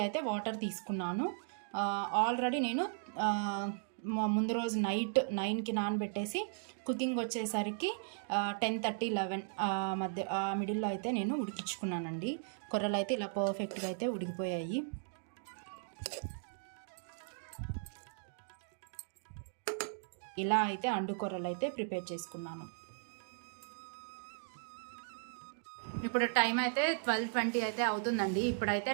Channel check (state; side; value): silent; left; digital silence